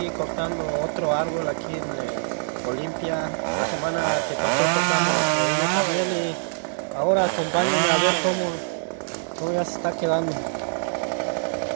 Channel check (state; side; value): silent; left; digital silence